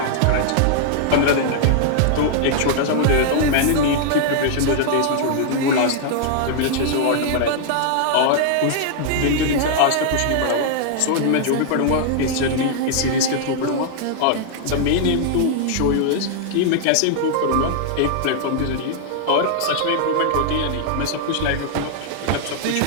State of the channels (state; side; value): different; both; correlation -0.01